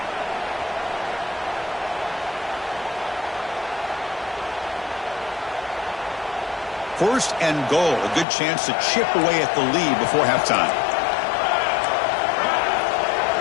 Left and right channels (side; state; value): right; drops out; at 8.2 s